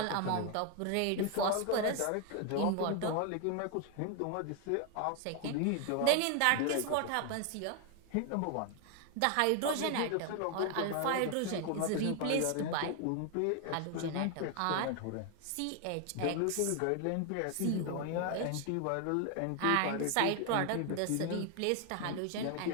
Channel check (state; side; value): different; both; correlation 0.01